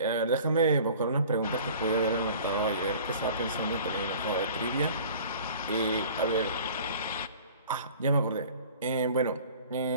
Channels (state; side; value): inverted; both; correlation -0.46